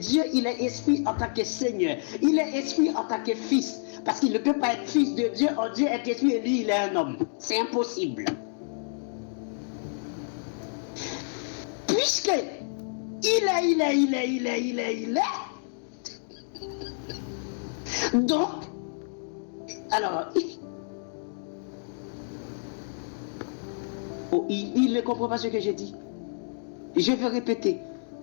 il est esprit en tant que Seigneur, il est esprit en tant que fils, parce qu'il ne peut pas être fils de Dieu, or Dieu est esprit et lui il est un homme. C'est impossible. Puisque il est. Donc, alors, il ne comprend pas ce que j'ai dit. Je vais répéter.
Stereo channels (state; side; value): silent; right; digital silence